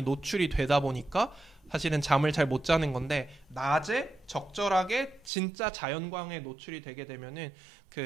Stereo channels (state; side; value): drops out; left; at 5.3 s